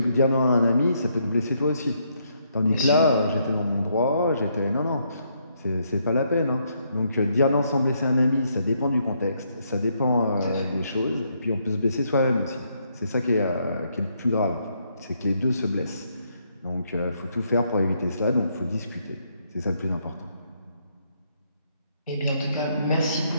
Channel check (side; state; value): both; inverted; correlation -0.74